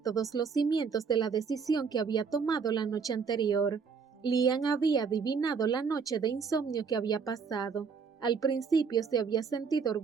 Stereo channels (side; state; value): left; quieter; 5.8 dB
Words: todos los cimientos de la decisión que había tomado la noche anterior. Liam había adivinado la noche de insomnio que había pasado. Al principio se había sentido